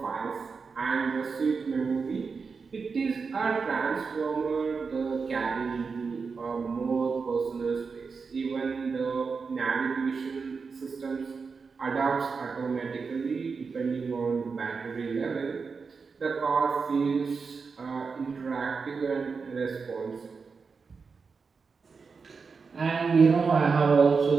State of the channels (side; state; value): left; quieter; 5.0 dB